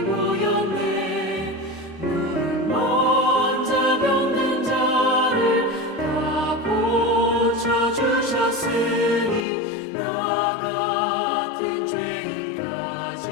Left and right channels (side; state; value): right; drops out; at 9.5 s